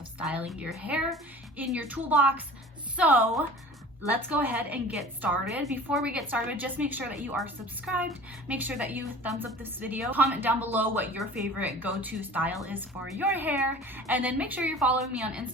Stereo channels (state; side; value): normal; both; correlation 0.42